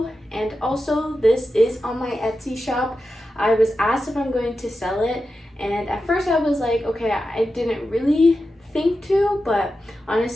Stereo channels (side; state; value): both; normal; correlation 0.91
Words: And also, this is on my Etsy shop. I was asked if I'm going to sell it, and at first I was like, okay, I didn't really think to, but